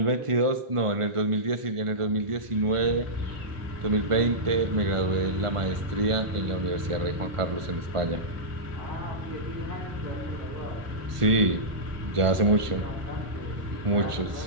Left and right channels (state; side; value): late; left; 1.5 ms